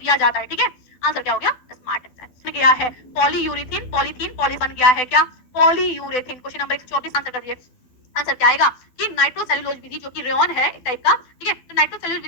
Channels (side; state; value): right; late; 12 ms